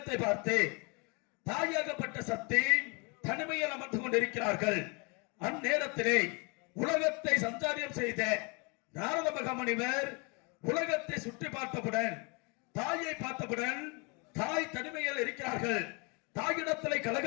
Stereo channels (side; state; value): right; quieter; 31.5 dB